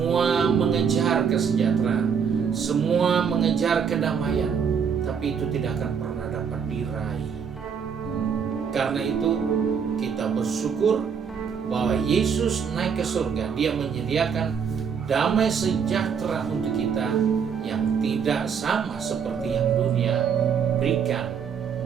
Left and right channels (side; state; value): left; quieter; 6.8 dB